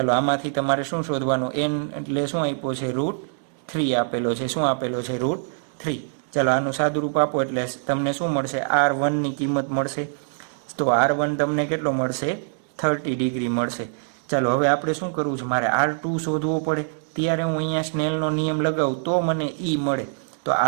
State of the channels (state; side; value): silent; left; 63 dB below the other